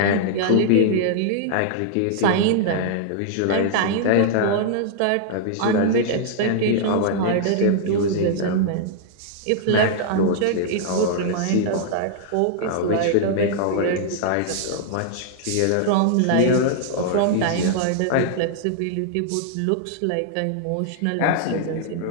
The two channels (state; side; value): different; both; correlation -0.01